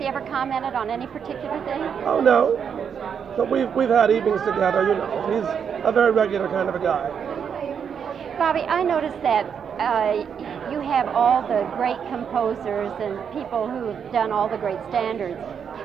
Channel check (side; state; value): left; quieter; 7.3 dB